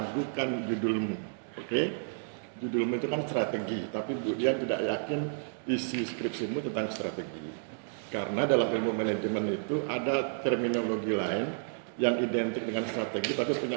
judulmu, oke? Judulmu itu kan strategi, tapi Bu Dian tidak yakin isi skripsimu tentang strategi. Karena dalam ilmu manajemen itu ada terminologi lain yang identik dengan strategi tapi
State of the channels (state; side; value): silent; left; digital silence